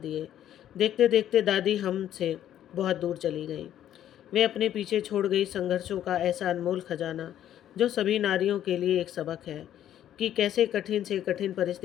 देखते देखते दादी हमसे बहुत दूर चली गई। वे अपने पीछे छोड़ गई संघर्षों का ऐसा अनमोल खजाना जो सभी नारियों के लिए एक सबक है कि कैसे कठिन से कठिन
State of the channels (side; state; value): right; quieter; 11.2 dB